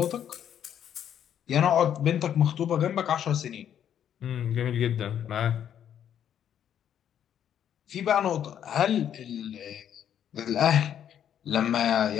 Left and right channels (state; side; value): quieter; right; 9.6 dB